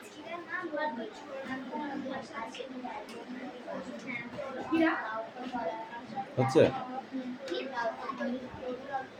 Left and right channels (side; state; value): both; identical; correlation 1.00